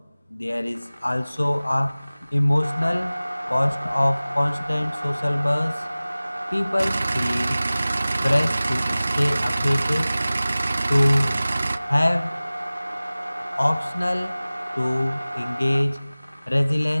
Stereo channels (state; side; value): inverted; both; correlation -0.98